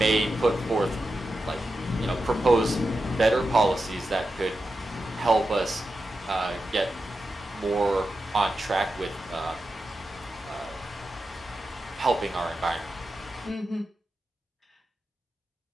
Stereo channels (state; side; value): normal; both; correlation 0.90